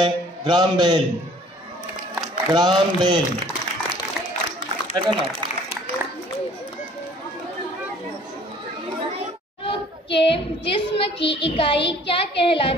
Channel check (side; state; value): both; normal; correlation 0.54